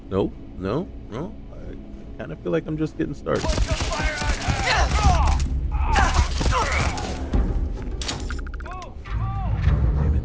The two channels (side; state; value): both; identical; correlation 1.00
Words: there. Nope, no, no. I kind of feel like I'm just getting started. What's the fire out here? Damn it.